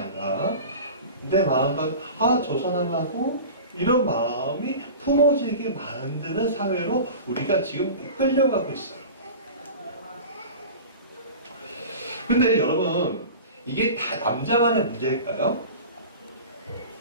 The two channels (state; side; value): inverted; both; correlation -0.35